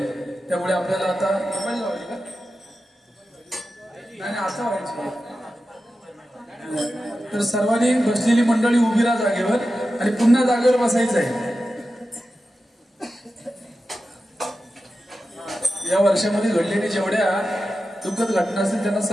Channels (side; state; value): both; normal; correlation 0.92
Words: त्यामुळे आपल्याला आता असं व्हायचं तर सर्वांनी बसलेली मंडळी उभी राहा जागेवर आणि पुन्हा जागेवर बसायचं आहे. या वर्षामध्ये घडलेली जेवढ्या दुःखद घटना असतील त्यांना